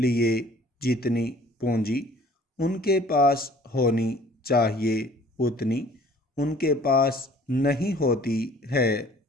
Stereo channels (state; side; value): normal; both; correlation 0.53